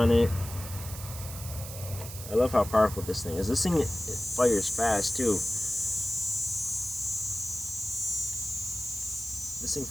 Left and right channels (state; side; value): noise; right; hiss, 11 dB below the sound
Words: it. I love how powerful this thing is. This thing, it fires fast too. This thing